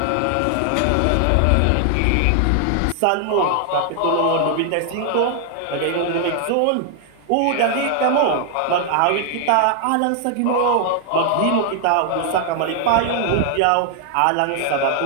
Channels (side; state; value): both; different; correlation 0.00